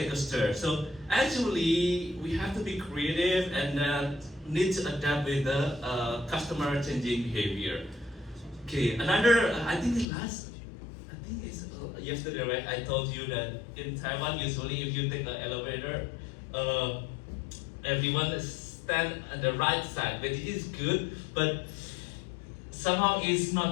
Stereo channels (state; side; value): drops out; right; at 10.1 s